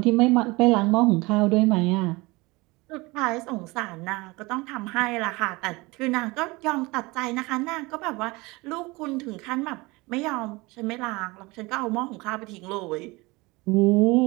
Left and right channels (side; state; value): left; quieter; 23.6 dB